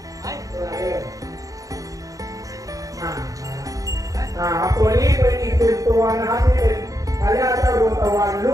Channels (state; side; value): late; left; 0.17 ms